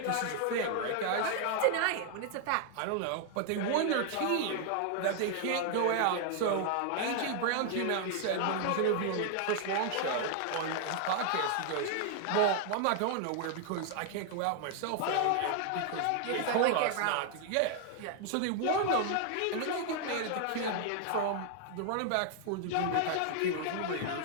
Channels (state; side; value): different; both; correlation 0.00